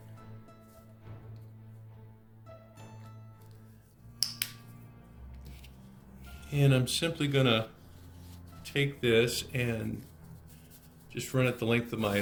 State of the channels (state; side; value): identical; both; correlation 1.00